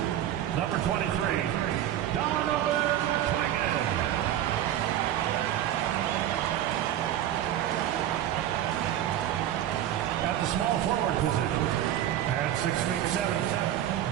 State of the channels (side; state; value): left; quieter; 11.8 dB